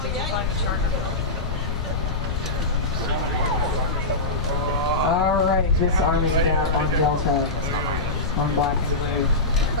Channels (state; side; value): noise; left; rumble, 4 dB below the sound